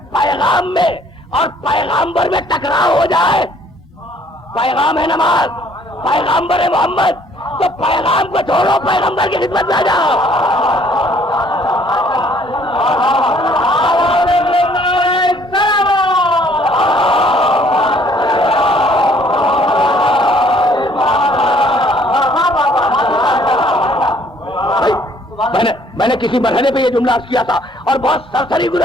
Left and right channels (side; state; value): both; normal; correlation 0.61